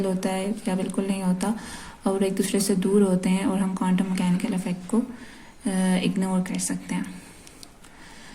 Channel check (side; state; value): both; identical; correlation 1.00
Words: होता है या बिल्कुल नहीं होता और एक दूसरे से दूर होते हैं और हम क्वांटम मैकेनिकल इफेक्ट को इग्नोर कर सकते हैं।